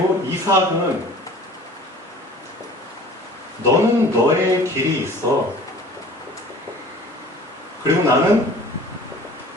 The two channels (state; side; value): normal; both; correlation 0.46